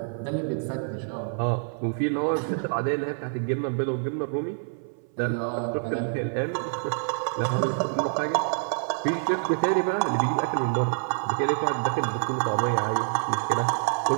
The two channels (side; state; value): left; silent; 58 dB below the other